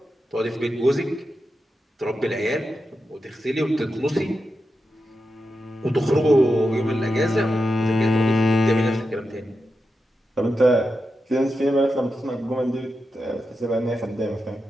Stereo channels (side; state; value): both; normal; correlation 0.89